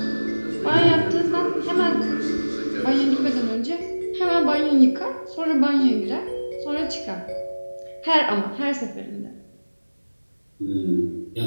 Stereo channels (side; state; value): both; inverted; correlation -1.00